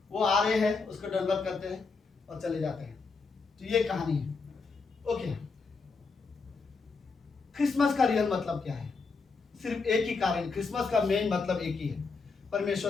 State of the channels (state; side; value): quieter; right; 4.5 dB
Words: वो आ रहे हैं, उसको दंडवत करते हैं और चले जाते हैं। तो ये कहानी है। ओके, क्रिसमस का रियल मतलब क्या है? सिर्फ एक ही कारण, क्रिसमस का मेन मतलब एक ही है, परमेश्वर